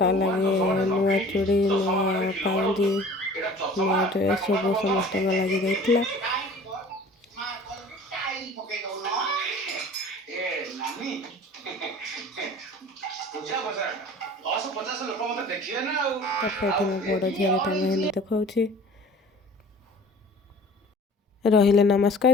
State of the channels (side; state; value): both; normal; correlation 0.45